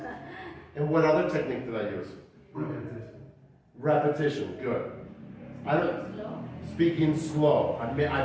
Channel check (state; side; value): identical; both; correlation 1.00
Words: And what other technique did I use? Repetition. Repetition, good. I don't, Slow. speaking slow.